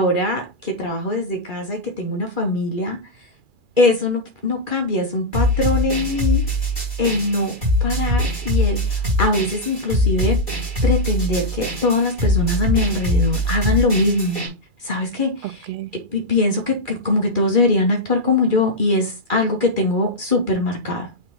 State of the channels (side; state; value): left; late; 2.4 ms